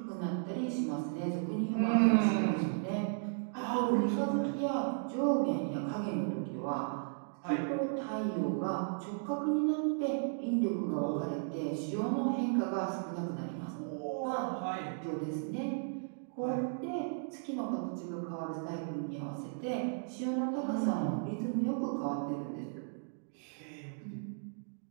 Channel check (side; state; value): left; silent; digital silence